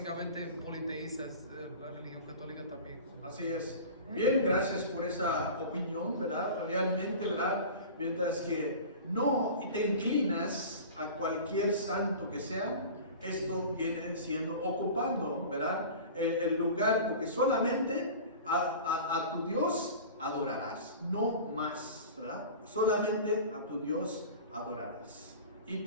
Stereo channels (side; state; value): both; inverted; correlation -0.37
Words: politeístas, la religión católica también. Así es. Bien, gracias por esa opinión, ¿verdad? Realmente, ¿verdad? Mientras que no te inclinas a cualquier santo que sea, esto viene siendo ocupando, ¿verdad? El lugar, porque solamente a tu Dios adorarás, no más, ¿verdad? Solamente a tu Dios adorarás y